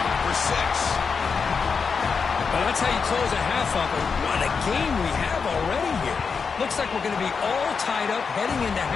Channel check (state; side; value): quieter; right; 5.5 dB